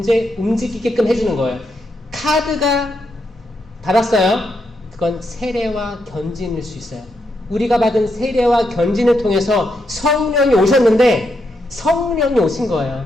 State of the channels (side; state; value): both; normal; correlation 0.81